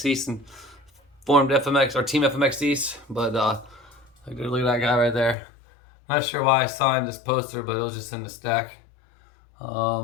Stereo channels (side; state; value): right; drops out; at 5.4 s